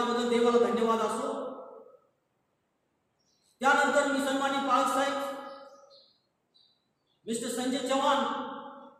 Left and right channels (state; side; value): identical; both; correlation 1.00